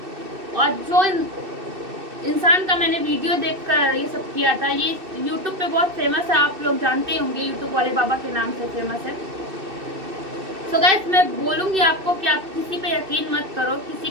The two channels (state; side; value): late; left; 2.6 ms